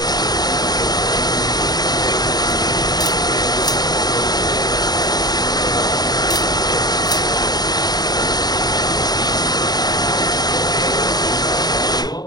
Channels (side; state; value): right; late; 0.19 ms